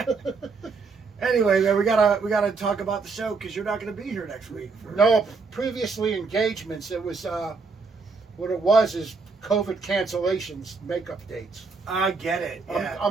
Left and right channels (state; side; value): quieter; left; 4.4 dB